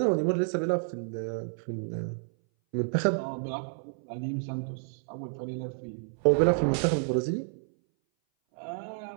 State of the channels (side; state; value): left; silent; 58 dB below the other